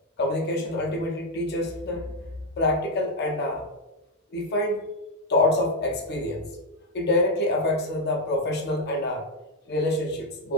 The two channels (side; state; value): both; normal; correlation 0.05